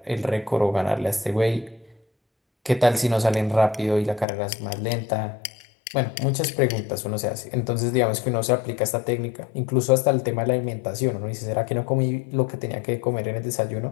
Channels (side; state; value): right; drops out; at 4.2 s